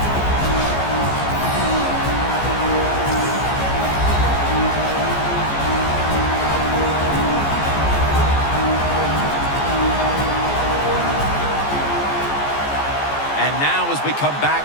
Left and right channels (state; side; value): late; right; 14 ms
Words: And now as we come